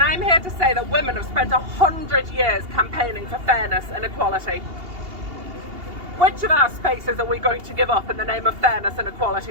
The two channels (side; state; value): left; late; 2.8 ms